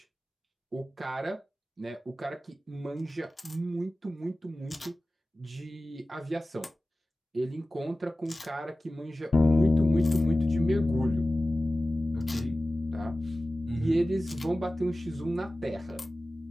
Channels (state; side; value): normal; both; correlation 0.95